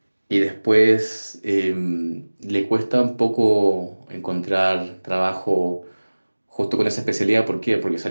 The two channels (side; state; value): both; inverted; correlation -1.00